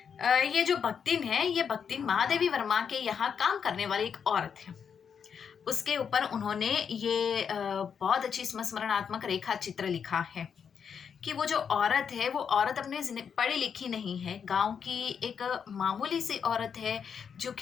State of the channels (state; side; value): quieter; right; 7.0 dB